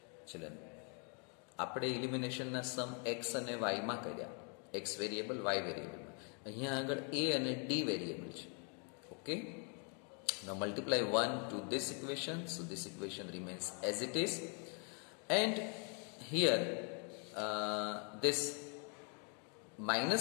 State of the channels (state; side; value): quieter; right; 38.8 dB